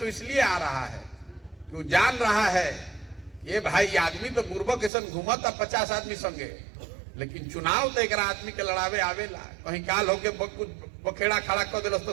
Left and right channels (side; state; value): left; drops out; at 4.9 s